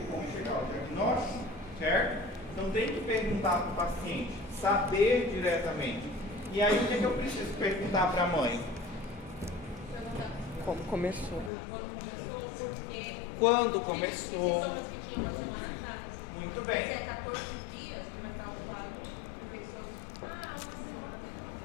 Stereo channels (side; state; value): right; drops out; at 11.5 s